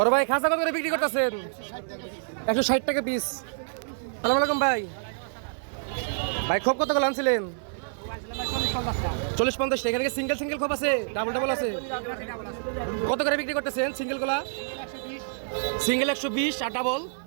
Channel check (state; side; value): silent; left; 60 dB below the other